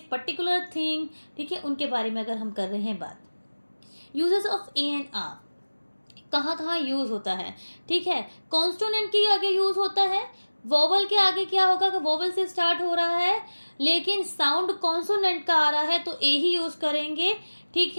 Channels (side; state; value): both; inverted; correlation -1.00